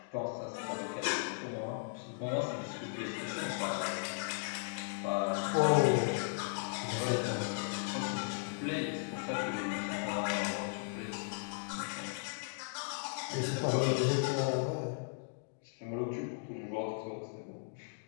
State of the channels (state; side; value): silent; right; digital silence